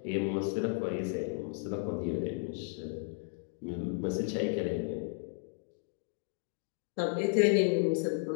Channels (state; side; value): silent; right; 55 dB below the other